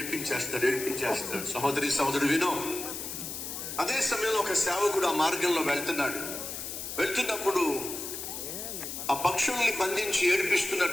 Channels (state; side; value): noise; left; hiss, 7 dB below the sound